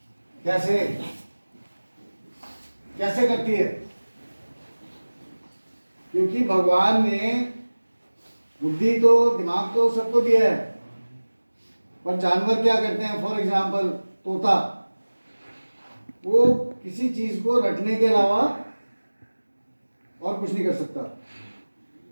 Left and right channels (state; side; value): inverted; both; correlation -1.00